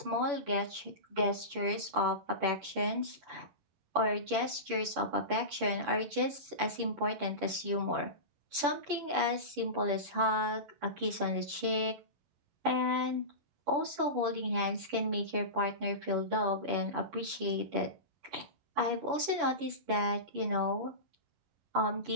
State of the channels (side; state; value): left; late; 10 ms